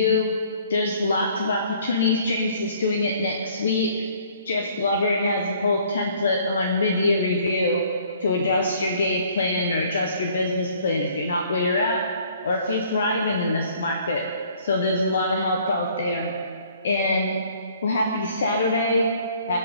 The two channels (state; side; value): inverted; both; correlation -0.58